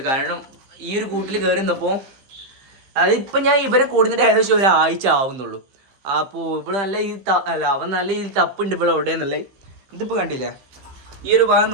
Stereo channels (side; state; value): left; late; 15 ms